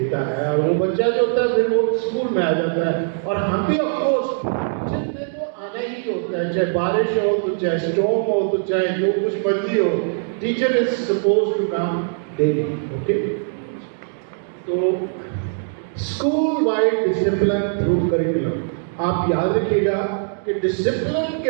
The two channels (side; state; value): left; silent; digital silence